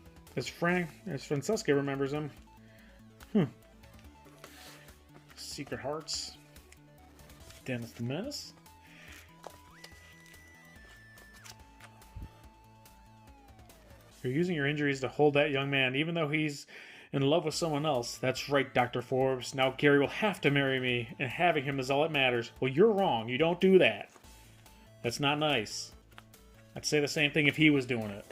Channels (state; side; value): identical; both; correlation 1.00